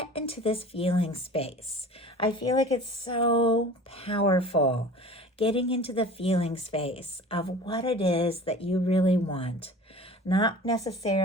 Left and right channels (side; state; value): both; normal; correlation 0.41